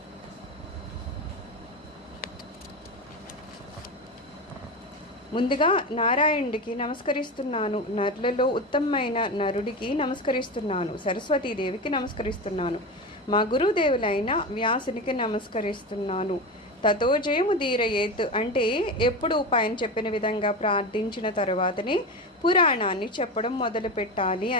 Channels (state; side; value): normal; both; correlation 0.22